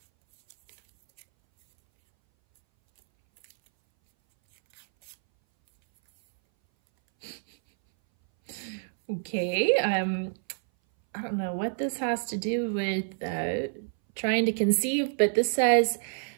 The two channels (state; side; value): silent; left; 59 dB below the other